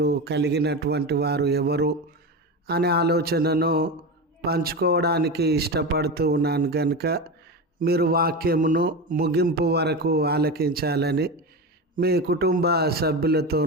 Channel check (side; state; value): both; normal; correlation 0.22